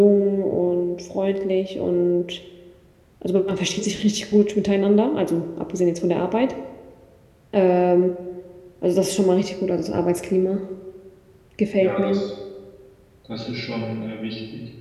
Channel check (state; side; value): identical; both; correlation 1.00